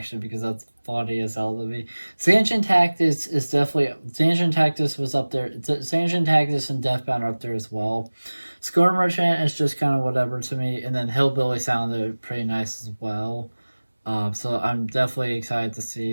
because that's funny as hell to me. Sanchin Tactics is definitely Sanchin Tactics was up there. Sanchin Tactics and Deathbound are up there as well. Score Merchant is just kind of whatever to me, and then Hillbilly sounded pretty nice as well. So I'm definitely excited to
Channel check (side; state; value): both; inverted; correlation -1.00